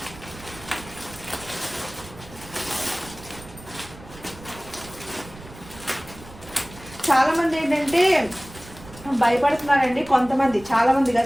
చాలామంది ఏంటంటే భయపడుతున్నారండి. కొంతమంది, చాలామంది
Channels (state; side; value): noise; right; rumble, 18 dB below the sound